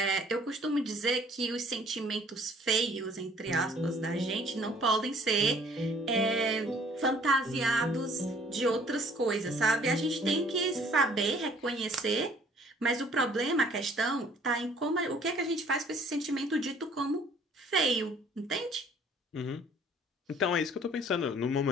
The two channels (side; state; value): both; normal; correlation 0.57